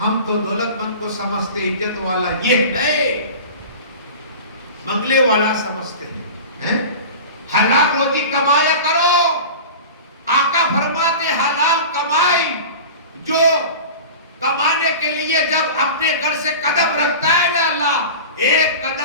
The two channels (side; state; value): both; inverted; correlation -0.34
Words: ہم تو دولت مند کو سمجھتے، عزت والا یہ نہیں، منگلے والا سمجھتے ہیں. حلال روزی کمایا کرو. آقا فرماتے حلال کمائی جو کمانے کے لیے جب اپنے گھر سے قدم رکھتا ہے نا اللہ ایک